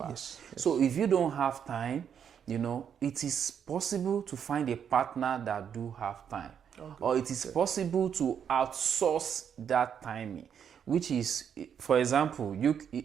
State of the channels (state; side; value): quieter; left; 8.1 dB